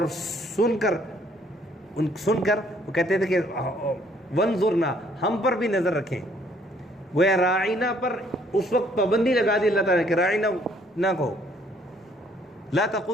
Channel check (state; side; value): normal; both; correlation 0.63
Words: سن کر وہ کہتے تھے کہ وَانظُرْنَا، ہم پر بھی نظر رکھیں، وہ راعینا پر اس وقت پابندی لگا دی اللہ تعالیٰ کہ راعینا نہ کہو، لا